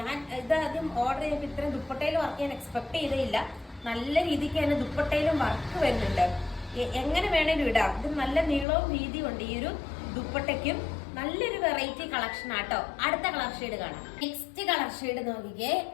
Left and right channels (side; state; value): right; drops out; at 8.7 s